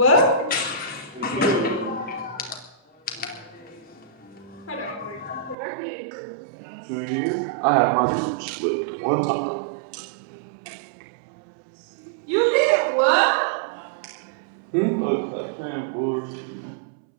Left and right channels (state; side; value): drops out; left; at 5.6 s